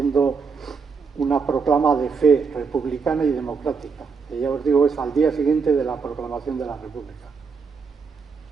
una proclama de fe republicana y democrática, que ya os digo es al día siguiente de la proclamación de la República.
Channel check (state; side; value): quieter; left; 5.3 dB